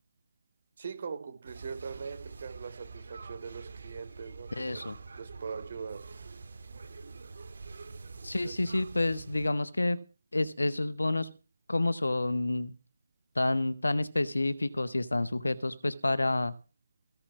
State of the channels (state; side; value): inverted; both; correlation -0.97